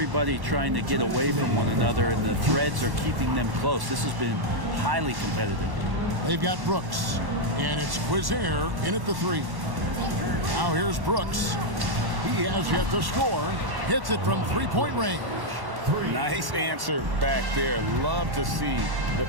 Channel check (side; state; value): left; late; 1.1 ms